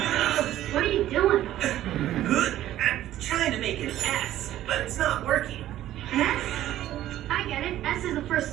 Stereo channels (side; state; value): left; quieter; 13.3 dB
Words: What are you doing? I'm trying to make an S, but it's not working. S? I get it. S is the first